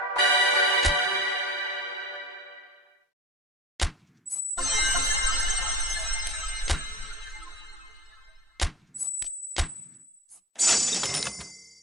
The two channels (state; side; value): normal; both; correlation 0.37